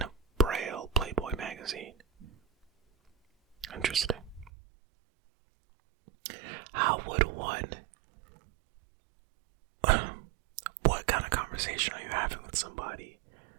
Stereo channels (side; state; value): left; drops out; at 4.5 s